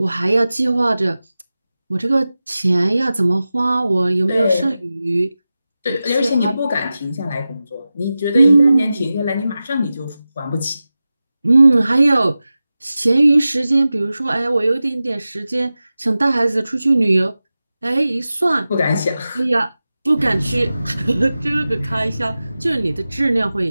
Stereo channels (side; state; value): both; inverted; correlation -0.95